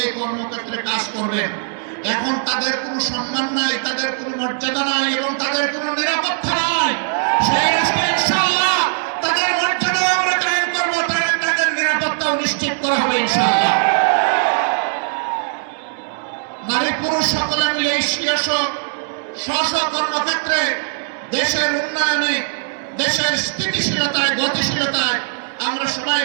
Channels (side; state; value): left; silent; digital silence